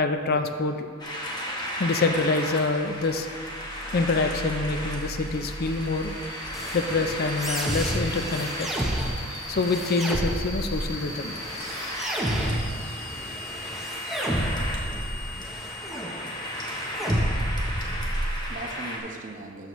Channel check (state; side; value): normal; both; correlation 0.35